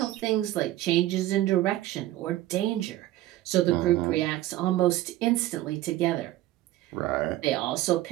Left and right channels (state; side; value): quieter; left; 15.2 dB